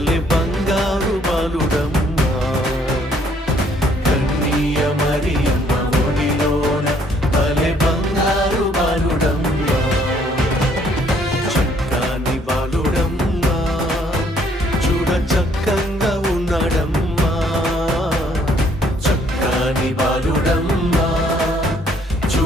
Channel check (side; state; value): both; normal; correlation 0.64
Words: బంగారు బాలుడమ్మా. కన్నీయ మరియమ్మ ఒడిలోన భలే బంగారు బాలుడమ్మా. చక్కని బాలుడమ్మా, చూడ చక్కంగా ఉన్నాడమ్మా. చక్కని బాలుడమ్మా,